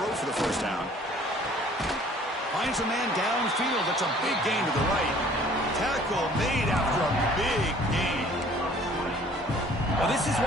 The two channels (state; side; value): normal; both; correlation 0.54